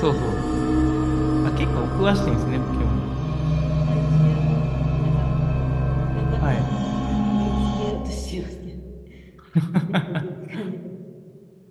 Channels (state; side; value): identical; both; correlation 1.00